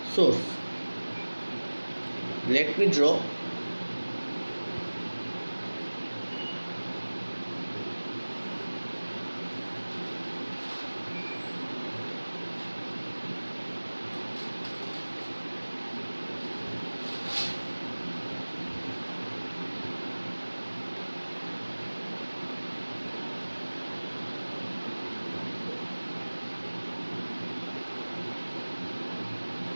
source. Let me draw.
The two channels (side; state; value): both; inverted; correlation -1.00